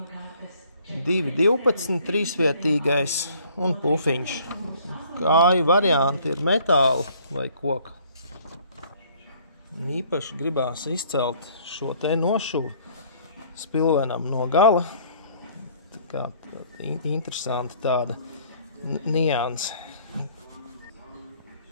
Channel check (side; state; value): both; inverted; correlation -0.58